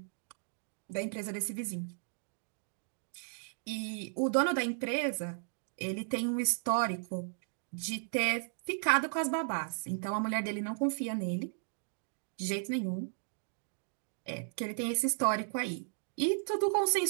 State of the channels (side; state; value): left; silent; digital silence